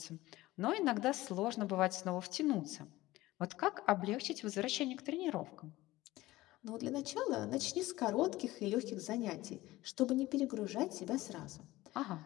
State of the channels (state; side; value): quieter; right; 17.8 dB